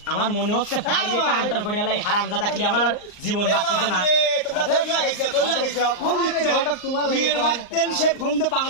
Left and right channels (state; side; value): late; right; 38 ms